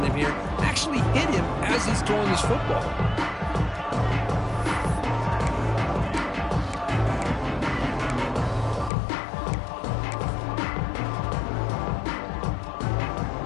him here, actually hit him as he's throwing his football.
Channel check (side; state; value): right; drops out; at 8.9 s